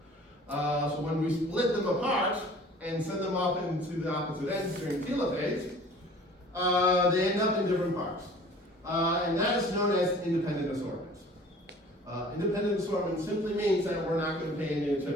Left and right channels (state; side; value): normal; both; correlation 0.48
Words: up. So when we split them apart and send them off into the opposite ends during telophase, they end up in different parts. And that is known as independent assortment. Independent assortment simply means that we're not going to pay any